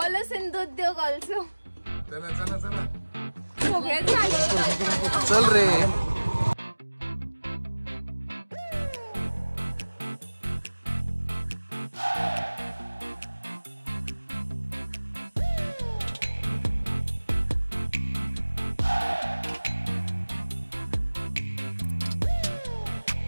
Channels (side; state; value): both; inverted; correlation -1.00